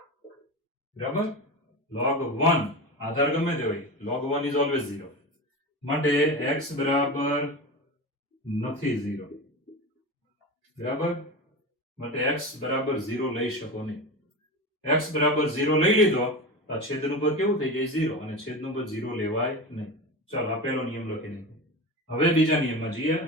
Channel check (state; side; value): normal; both; correlation 0.25